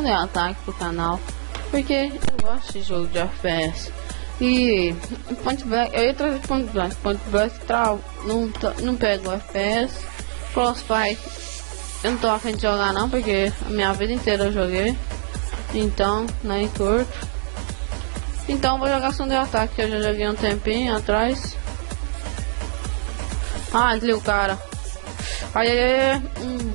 Attack pro canal, porque eu gosto de jogo de FPS. E Point Blank, eu ia trazer Point Blank não pega o FPS. Frostbite eu não tô a fim de jogar não, porque a minha vida inteira eu joguei. Então, nem curto. Então vou jogar Sunday Attack, que eu já joguei um tempinho atrás. Ah, desliga o cara.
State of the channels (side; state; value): left; silent; digital silence